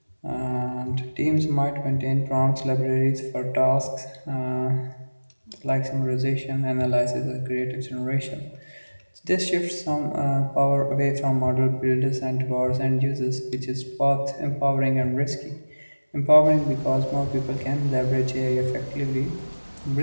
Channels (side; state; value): both; inverted; correlation -1.00